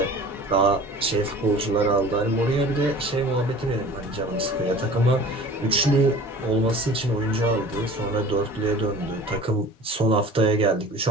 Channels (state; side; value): normal; both; correlation 0.43